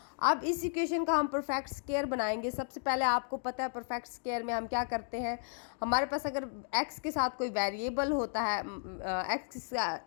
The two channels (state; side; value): silent; right; digital silence